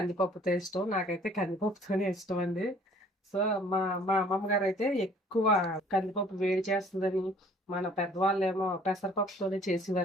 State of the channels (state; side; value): normal; both; correlation 0.55